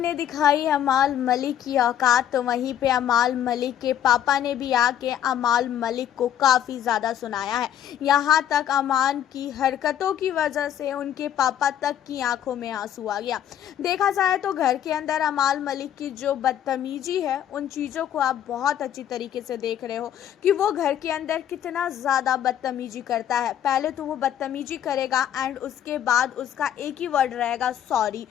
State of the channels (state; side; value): quieter; right; 10.4 dB